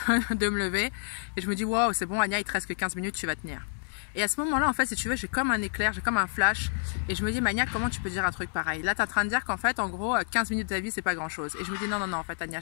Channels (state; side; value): silent; right; digital silence